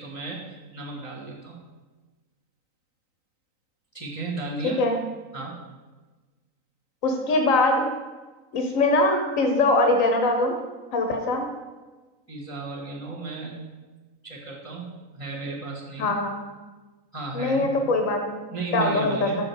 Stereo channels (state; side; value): late; right; 3.9 ms